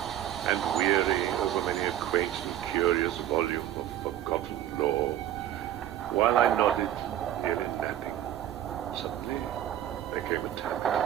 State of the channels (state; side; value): quieter; left; 12.0 dB